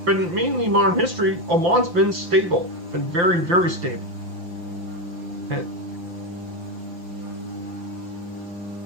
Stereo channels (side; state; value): left; late; 5.8 ms